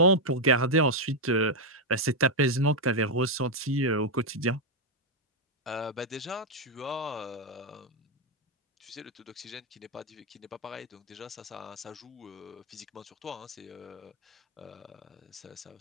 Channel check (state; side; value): normal; both; correlation 0.00